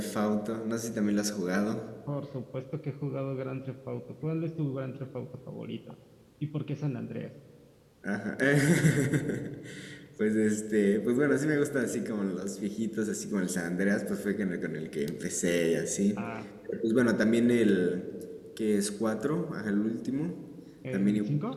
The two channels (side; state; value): both; identical; correlation 1.00